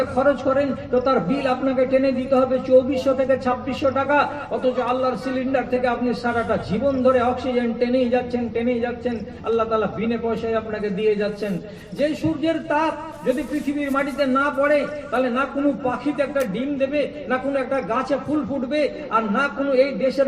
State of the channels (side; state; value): both; identical; correlation 1.00